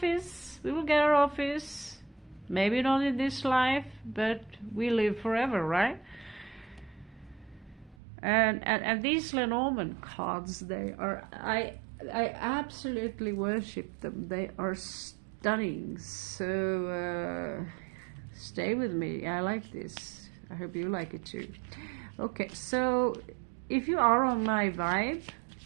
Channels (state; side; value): drops out; left; at 8.0 s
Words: we will get our office. Maybe not in this life, but we live forever, right? And these Lenormand cards, they are, I absolutely worship them. They are stunning. So stay with me. I like this. I hope you like it too. Okay, so if you are on my vibe,